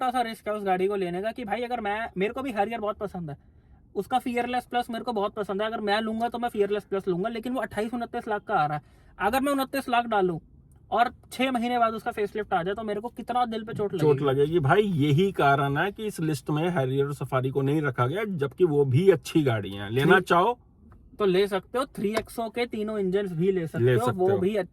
सा रिस्क है उस गाड़ी को लेने का कि भाई अगर मेरे को भी हैरियर बहुत पसंद है, उसका फियरलेस प्लस मेरे को बहुत पसंद है, अगर मैं लूंगा तो मैं फियरलेस प्लस लूंगा, लेकिन वो 28-29 लाख का आ रहा है। अगर मैं 29 लाख डालूं और 6 महीने बाद उसका फेसलिफ्ट आ जाए तो मेरे को कितना दिल पे चोट लगेगी। भाई यही कारण है कि इस लिस्ट में हैरियर सफारी को नहीं रखा गया, जबकि वो भी अच्छी गाड़ियां हैं। लेना चाहो तो ले सकते हो। 3XO के तीनों इंजन भी ले सकते हो, वो भी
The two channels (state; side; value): identical; both; correlation 1.00